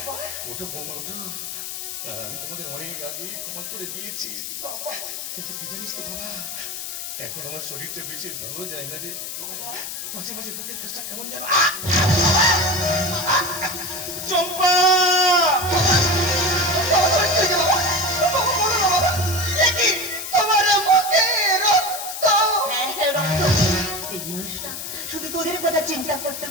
ওঠো বৌমা, ওঠো। আমি তোমাদের অনেক আগেই ক্ষমা করে দিয়েছি, কিন্তু কি জানিস তো বাবা, এখন আমার শরীরটা বেশি ভালো যায় না রে। মাঝে মাঝে বুকের কাজটা কেমন যেন। চম্পা, এই মানুষটা শুধু তোদের কথা চিন্তা করতে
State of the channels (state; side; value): noise; left; hiss, 7 dB below the sound